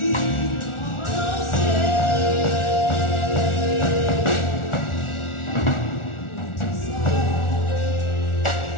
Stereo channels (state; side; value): late; right; 1.4 ms